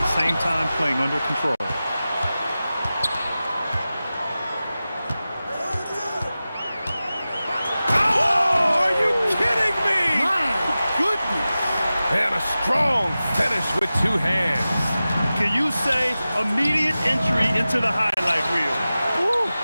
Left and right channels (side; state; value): both; inverted; correlation -0.95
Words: same time playing under control. Oh, are you kidding me? My goodness. And a strong finish with 2 hands. Can you say immediate entry into the highlight reel? Woo,